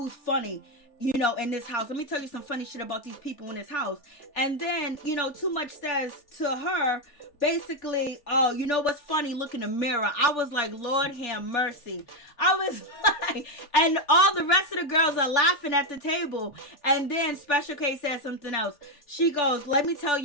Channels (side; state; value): right; late; 3.4 ms